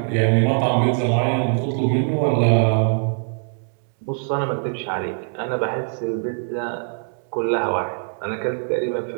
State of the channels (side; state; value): left; silent; 60 dB below the other